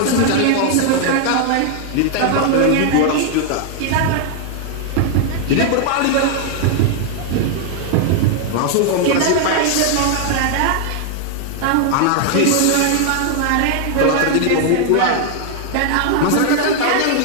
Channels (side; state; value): both; different; correlation 0.00